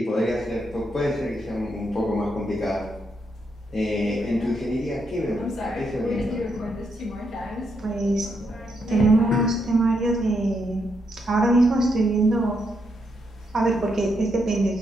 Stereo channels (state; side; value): normal; both; correlation 0.79